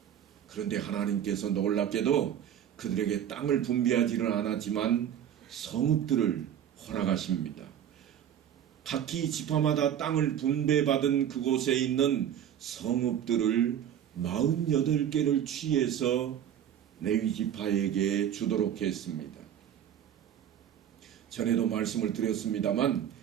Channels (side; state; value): left; quieter; 9.8 dB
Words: 그런데 하나님께서 놀랍게도 그들에게 땅을 분배하지는 않았지만 성읍들을 허락하십니다. 각기 지파마다 땅을 분배받은 그곳에 있는 성읍들을 48개를 취해서 레위 지파에게 주도록 했습니다. 전에도 말씀을 드렸습니다만